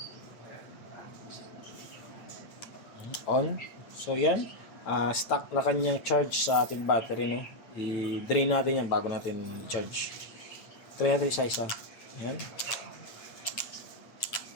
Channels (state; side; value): late; right; 9.0 ms